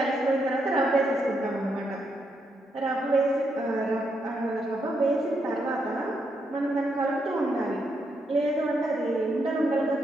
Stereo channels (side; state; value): both; normal; correlation 0.79